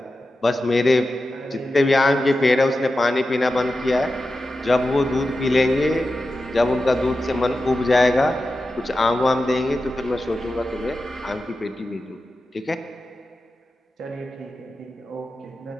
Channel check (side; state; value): both; normal; correlation 0.92